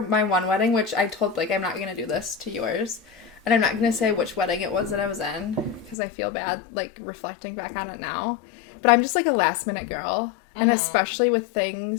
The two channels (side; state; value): right; drops out; at 6.0 s